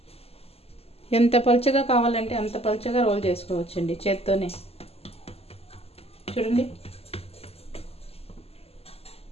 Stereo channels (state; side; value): late; right; 0.29 ms